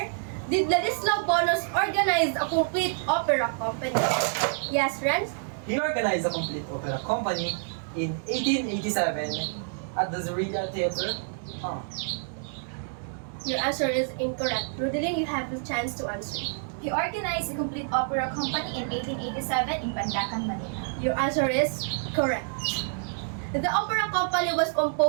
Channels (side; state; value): left; silent; digital silence